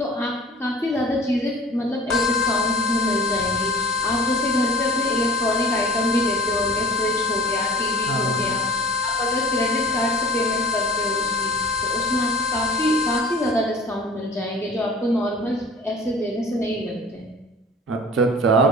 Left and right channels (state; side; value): normal; both; correlation 0.44